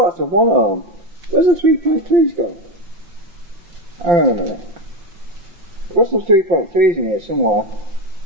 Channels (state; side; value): late; left; 5.8 ms